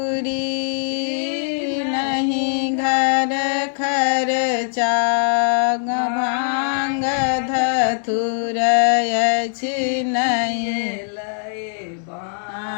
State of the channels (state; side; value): silent; right; 65 dB below the other